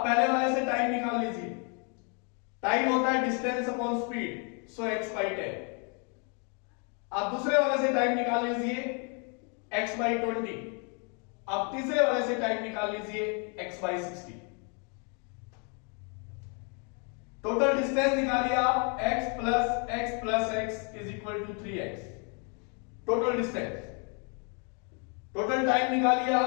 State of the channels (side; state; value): right; quieter; 37.4 dB